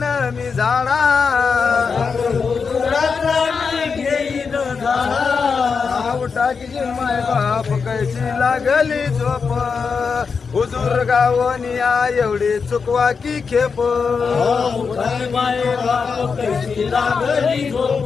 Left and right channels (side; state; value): right; quieter; 5.4 dB